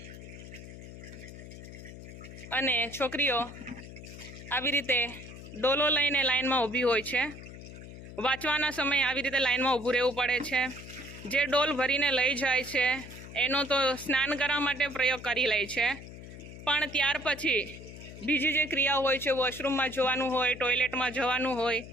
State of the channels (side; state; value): left; noise; hum, 14 dB below the sound